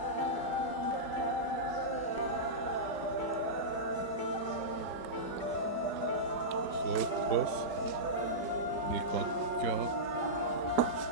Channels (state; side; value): late; right; 5.3 ms